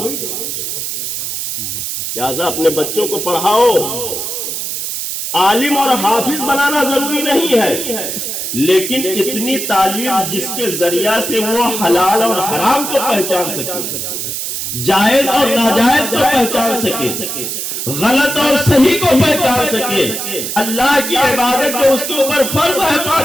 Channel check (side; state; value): right; noise; hiss, 4 dB below the sound